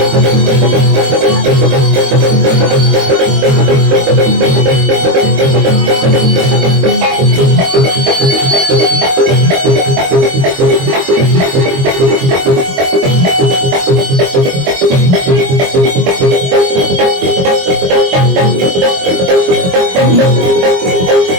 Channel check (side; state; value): left; late; 22 ms